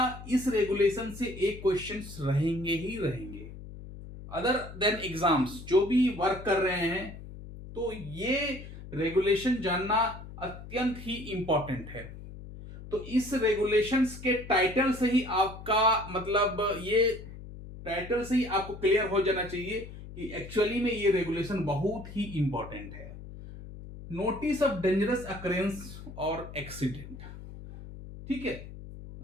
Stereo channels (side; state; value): left; noise; hum, 13 dB below the sound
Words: इस रेगुलेशन से एक क्वेश्चंस रहेंगे ही रहेंगे। अदर देन एग्जाम्स जो भी वर्क कर रहे हैं तो ये रेगुलेशन जानना अत्यंत ही इंपॉर्टेंट है। तो इस रेगुलेशंस के टाइटल से ही आपका मतलब ये टाइटल से ही आपको क्लियर हो जाना चाहिए कि एक्चुअली में ये रेगुलेशन बहुत ही इंपॉर्टेंट है। नोटिस ऑफ डेंजरस अकरेंस और एक्सीडेंट, ठीक है।